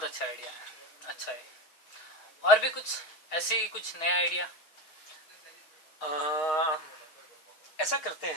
अच्छा आइडिया है। अच्छा है। और भी कुछ ऐसे ही कुछ नया आइडिया? ऐसा करते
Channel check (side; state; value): right; late; 6.3 ms